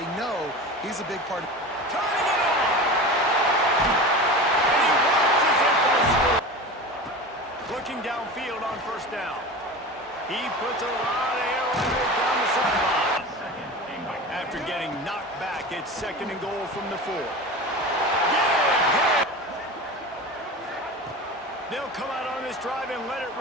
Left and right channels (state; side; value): normal; both; correlation 0.31